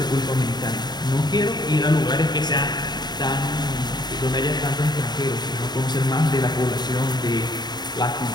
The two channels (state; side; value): late; right; 0.20 ms